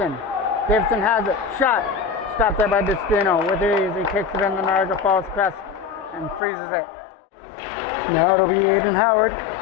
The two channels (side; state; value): right; drops out; at 6.4 s